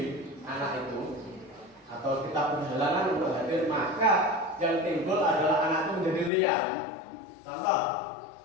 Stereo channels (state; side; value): drops out; right; at 6.3 s